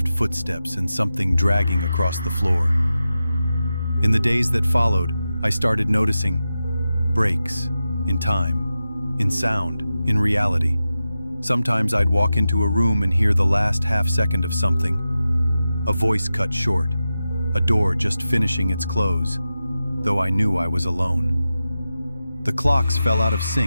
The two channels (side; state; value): both; inverted; correlation -0.92